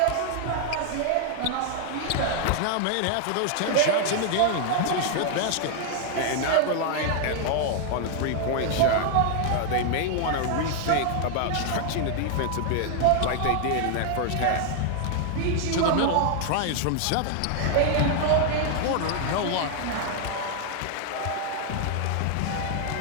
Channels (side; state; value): both; different; correlation 0.00